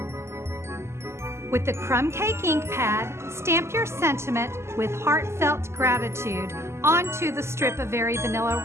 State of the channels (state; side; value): late; left; 0.13 ms